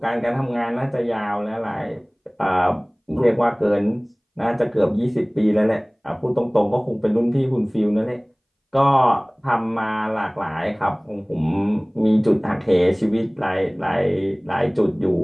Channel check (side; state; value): both; identical; correlation 1.00